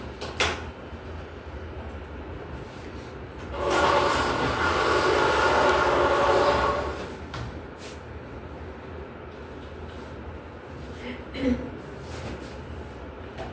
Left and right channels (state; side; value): identical; both; correlation 1.00